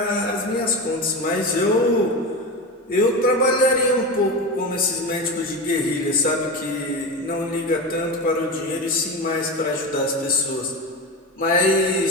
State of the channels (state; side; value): normal; both; correlation 0.22